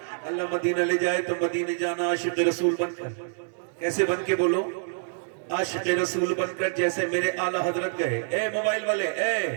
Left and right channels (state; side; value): silent; left; digital silence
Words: اللہ مدینہ لے جائے تو مدینہ جانا عاشق رسول بن کر۔ کیسے بن کے بولو؟ عاشق رسول بن کر، جیسے میرے اعلیٰ حضرت گئے۔ اے موبائل والے، اے